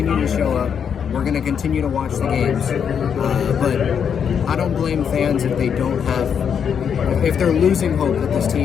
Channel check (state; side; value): quieter; right; 7.5 dB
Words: to show up. We're going to continue to watch the games, but I don't blame fans if they don't have, if they're losing hope that this